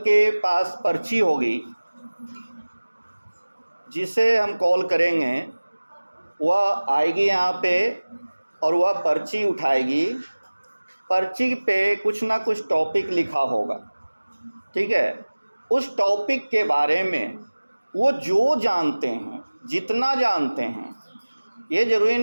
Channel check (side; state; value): both; inverted; correlation -1.00